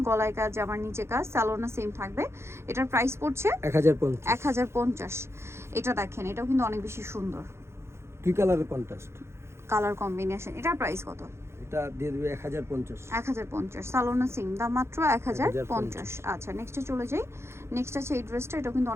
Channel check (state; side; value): late; left; 0.13 ms